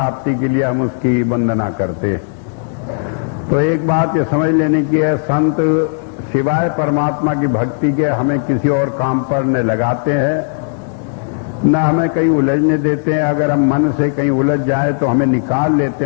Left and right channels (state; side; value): silent; right; digital silence